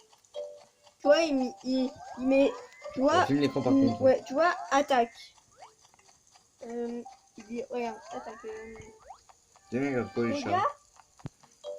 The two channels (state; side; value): identical; both; correlation 1.00